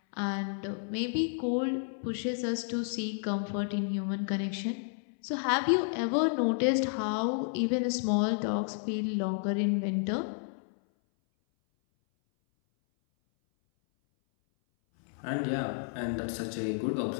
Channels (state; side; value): silent; right; 57 dB below the other